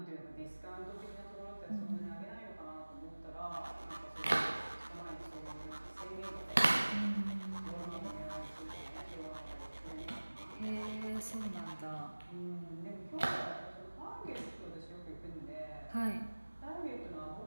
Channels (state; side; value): inverted; both; correlation -1.00